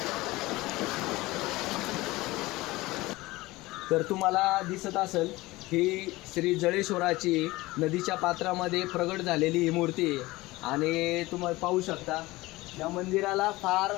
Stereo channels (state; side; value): quieter; right; 19.9 dB